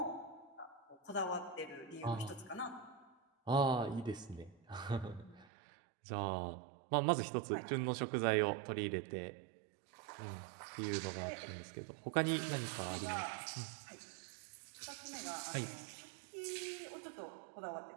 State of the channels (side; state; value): left; drops out; at 5.5 s